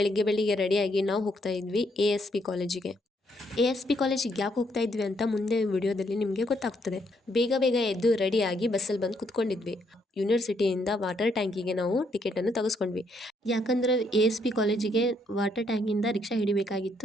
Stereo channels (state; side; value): normal; both; correlation 0.73